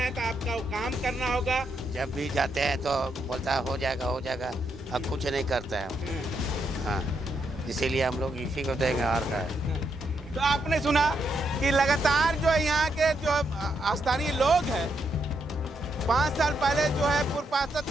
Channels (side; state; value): both; normal; correlation 0.79